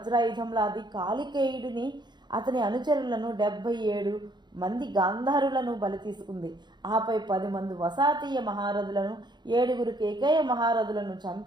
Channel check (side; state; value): left; late; 0.21 ms